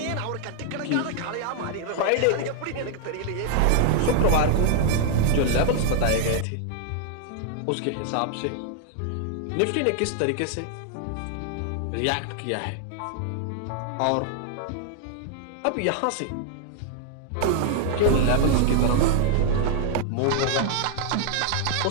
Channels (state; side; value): different; both; correlation 0.00